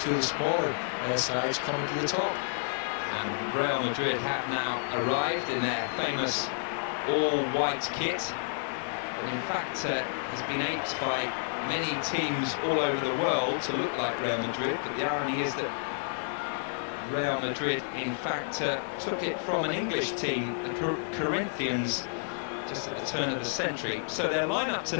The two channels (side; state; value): right; silent; digital silence